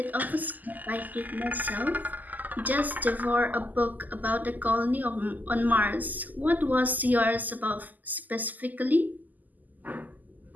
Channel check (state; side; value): late; left; 0.083 ms